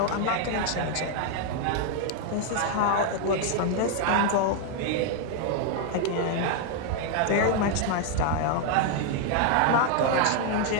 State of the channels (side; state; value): both; different; correlation 0.00